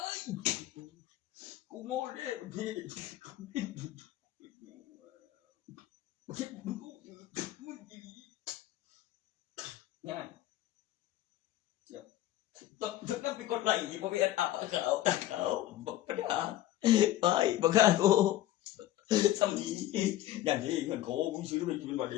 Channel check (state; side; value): quieter; right; 14.0 dB